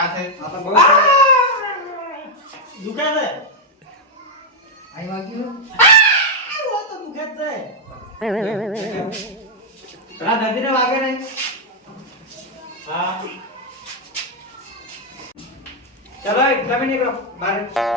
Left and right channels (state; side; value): normal; both; correlation -0.01